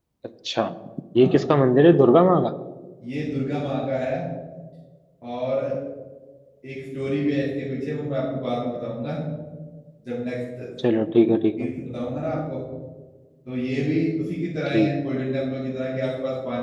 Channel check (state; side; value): identical; both; correlation 1.00